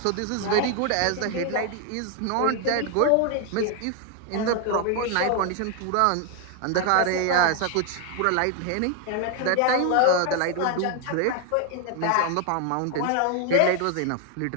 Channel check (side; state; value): both; different; correlation 0.01